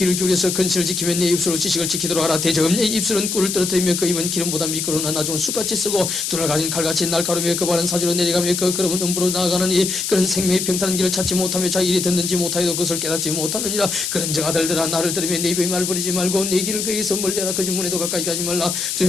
기울여서 근실을 지키며 내 입술로 지식을 지키도록 하라. 대저음 내 입술은 꿀을 떨어뜨리며 그 입은 기름보다 미끄러우나 나중은 숯같이 쓰고 눈을 가진 칼같이 날카로우며 그 발은 사지로 내려가며 그 걸음은 음부로 나아가느니 그런 생명의 평탄한 길을 찾지 못하며 자기 일이 듣는지 못하여도 그것을 깨닫지 못하느니라. 그런즉 아들들아 나를 들으며 내 입의 말을 버리지 말고 내 길을 그에게서 멀리하라. 그 지문에도 가까이 가지 말라.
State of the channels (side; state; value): left; noise; hiss, 2 dB below the sound